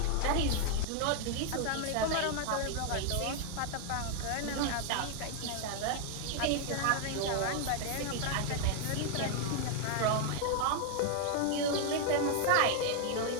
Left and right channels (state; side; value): different; both; correlation 0.00